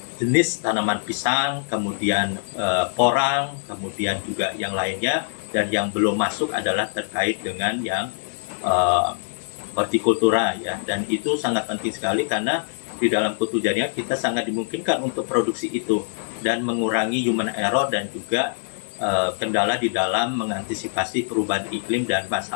jenis tanaman pisang, kemudian porang, kemudian juga yang lainnya, dan yang belum masuk adalah terkait dengan yang hortikultura, ya. Dan itu sangat penting sekali karena di dalam kultur jaringan kita sangat dimungkinkan untuk produksi itu dan mengurangi human error dan juga kendala di dalam mengantisipasi perubahan iklim dan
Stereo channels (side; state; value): right; silent; 63 dB below the other